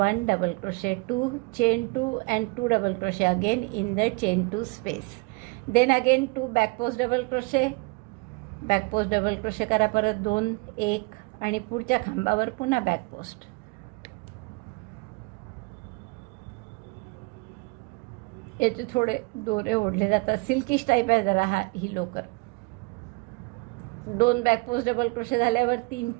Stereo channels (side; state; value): left; quieter; 28.4 dB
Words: double crochet 2, chain 2 and 2 double crochet again in the chain 2 space. Then again 2 back post double crochet, back post double crochet करा परत 2, 1, आणि पुढच्या खांबावर पुन्हा बॅक पोस्ट. याचे थोडे दोरे ओढले जातात, सिल्किश टाईप आहे जरा ही लोकर. 2 बॅक पोस्ट डबल क्रोशे झाल्यावर 3